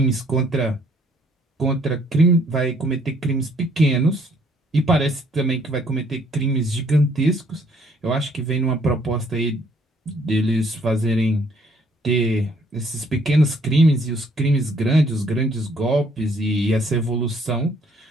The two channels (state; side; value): normal; both; correlation 0.64